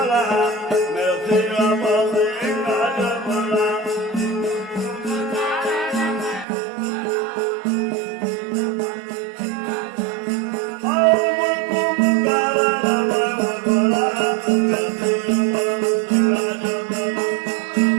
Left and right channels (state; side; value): drops out; left; at 6.5 s